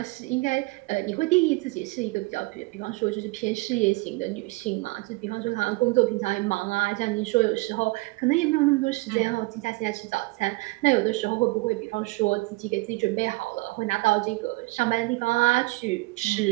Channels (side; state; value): left; quieter; 23.8 dB